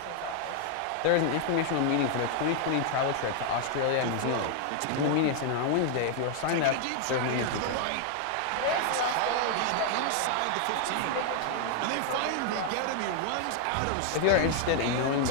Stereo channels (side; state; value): both; different; correlation 0.00